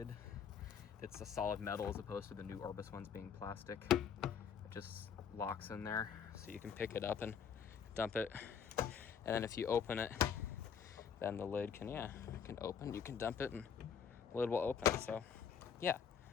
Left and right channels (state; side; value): quieter; right; 7.3 dB